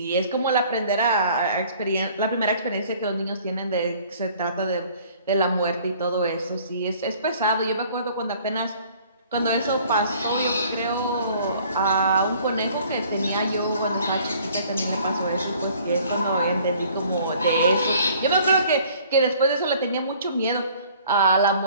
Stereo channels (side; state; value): both; inverted; correlation -0.55